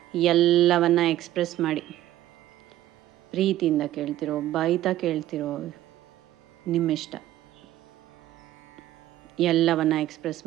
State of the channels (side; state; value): left; quieter; 14.1 dB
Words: ಎಲ್ಲವನ್ನ ಎಕ್ಸ್ಪ್ರೆಸ್ ಮಾಡಿ. ಪ್ರೀತಿಯಿಂದ ಕೇಳ್ತಿರೋ, ಬೈತಾ ಕೇಳ್ತಿರೋ, ನಿಮ್ಮಿಷ್ಟ. ಎಲ್ಲವನ್ನ ಎಕ್ಸ್ಪ್ರೆಸ್